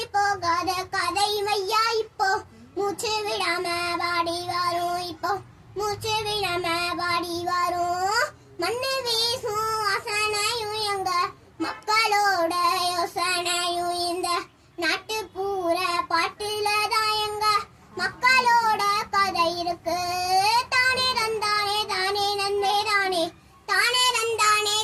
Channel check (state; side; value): identical; both; correlation 1.00